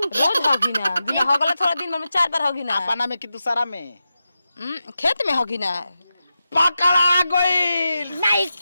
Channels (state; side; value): inverted; both; correlation -0.90